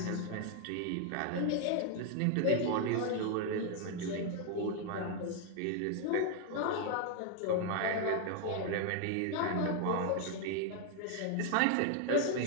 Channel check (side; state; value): both; different; correlation 0.00